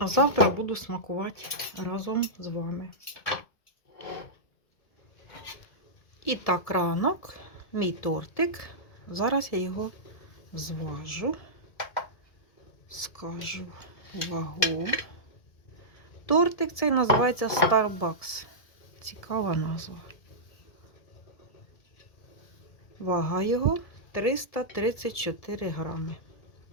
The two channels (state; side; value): late; right; 1.7 ms